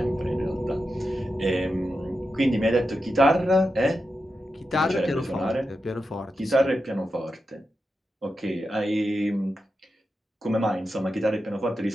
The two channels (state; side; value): normal; both; correlation 0.89